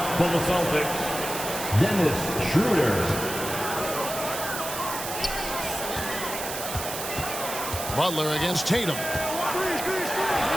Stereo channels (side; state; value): right; noise; hiss, 6 dB below the sound